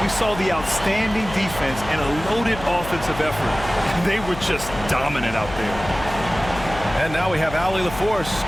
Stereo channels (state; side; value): noise; left; hum, 12 dB below the sound